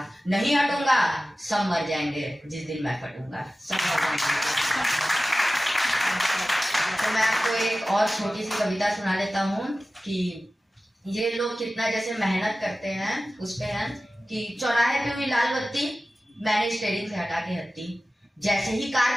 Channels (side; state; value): both; normal; correlation 0.96